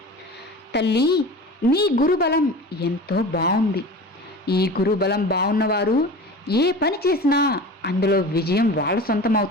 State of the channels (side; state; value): both; normal; correlation 0.35